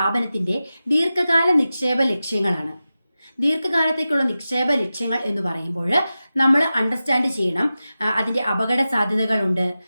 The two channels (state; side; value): inverted; both; correlation -0.94